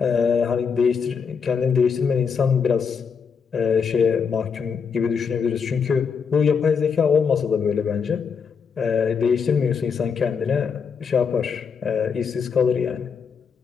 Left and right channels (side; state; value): right; quieter; 6.2 dB